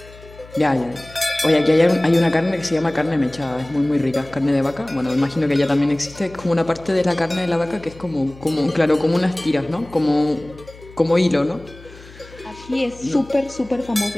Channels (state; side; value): noise; left; hum, 20 dB below the sound